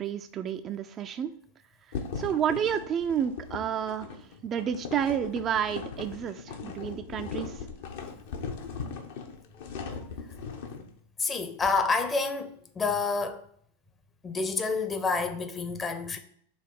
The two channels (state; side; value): normal; both; correlation 0.47